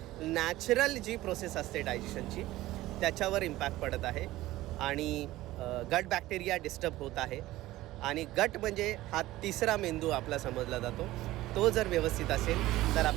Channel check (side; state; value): left; quieter; 16.7 dB